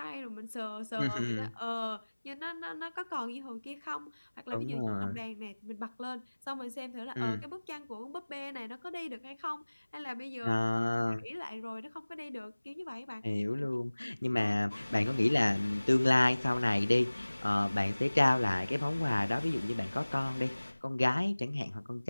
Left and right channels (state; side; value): inverted; both; correlation -1.00